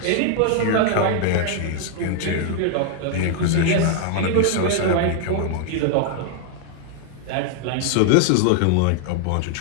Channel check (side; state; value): both; different; correlation 0.00